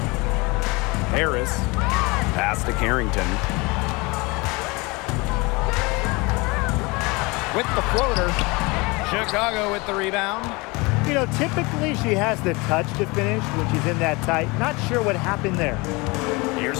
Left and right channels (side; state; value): right; quieter; 25.7 dB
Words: Harris. Pass to Carrington. With the floater. Chicago with the rebound. You know, typically she has the touch to finish when she's in that tight. Not sure what happened there.